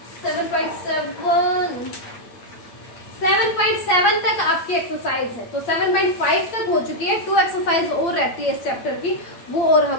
7.7 तक आपकी एक्सरसाइज है, तो 7.5 तक हो चुकी है, 2 एक्सरसाइज और रहती है इस चैप्टर की, वो और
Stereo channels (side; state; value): right; late; 8.7 ms